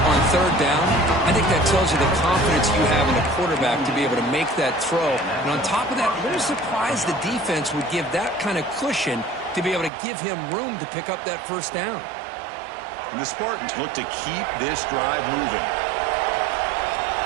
3rd down. I think that tells you the confidence you have in a quarterback to be able to make that throw. And on top of that, a little surprised the defense would give that kind of cushion to be able to give him room to pick up that first down. And the Spartans look to keep this drive moving.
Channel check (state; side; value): drops out; left; at 9.9 s